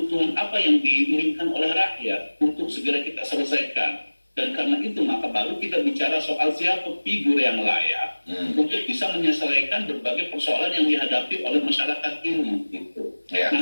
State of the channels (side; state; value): both; inverted; correlation -1.00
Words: apa yang diinginkan oleh rakyat untuk segera kita selesaikan. Dan karena itu maka baru kita bicara soal siapa figur yang layak untuk bisa menyelesaikan berbagai persoalan yang dihadapi oleh masyarakat ini. Gitu. Nah